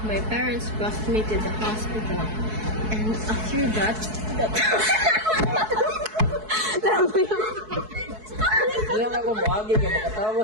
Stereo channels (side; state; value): left; late; 4.6 ms